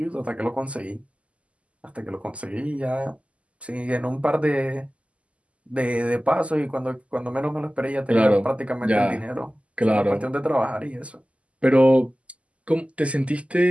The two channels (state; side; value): late; left; 0.062 ms